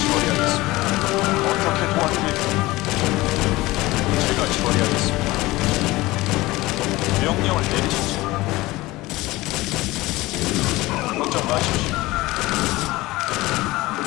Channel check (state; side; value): quieter; right; 19.6 dB